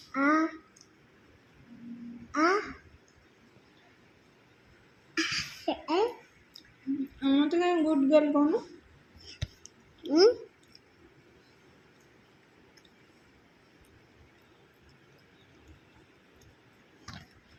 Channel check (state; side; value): identical; both; correlation 1.00